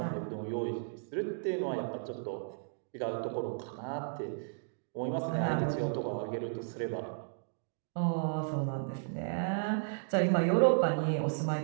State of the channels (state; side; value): silent; left; digital silence